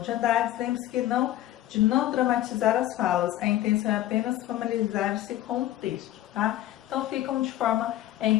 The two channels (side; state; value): right; quieter; 13.9 dB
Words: de Andrade. Lembre-se que não de não dramatizar as falas, a intenção é apenas familiarizar-se com o texto, tá? Então ficam de forma